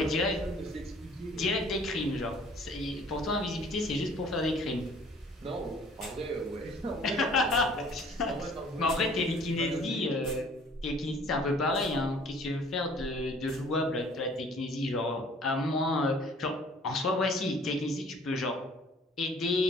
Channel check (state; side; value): normal; both; correlation 0.54